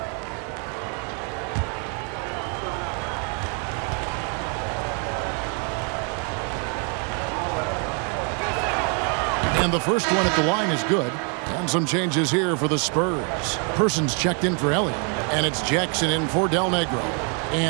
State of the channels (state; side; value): quieter; left; 38.7 dB